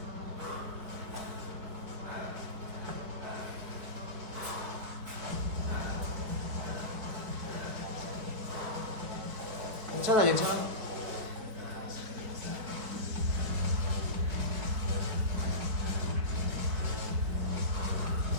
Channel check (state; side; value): late; left; 4.6 ms